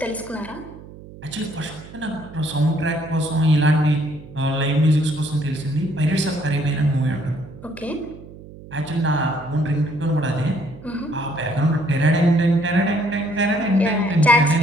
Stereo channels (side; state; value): right; noise; hum, 17 dB below the sound